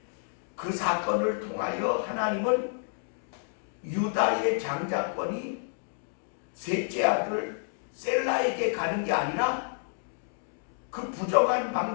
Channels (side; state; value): right; silent; digital silence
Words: 그 사건을 통하여 하나님은 유다의 장자권이 셋째 아들 셀라에게 가는 게 아니라 그 부정한